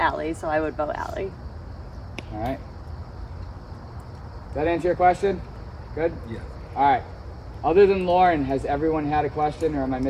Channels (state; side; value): identical; both; correlation 1.00